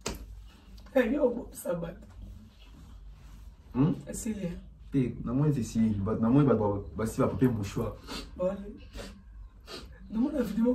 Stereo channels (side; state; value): both; identical; correlation 1.00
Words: Hey yo, ça bat. C'est là. Na moi c'est si, na moi bah si va papier mouchoir. Bon. Nous on a